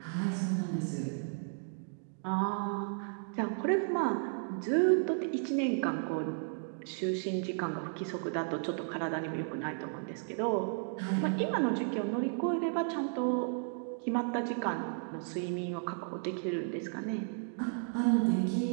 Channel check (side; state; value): left; silent; 55 dB below the other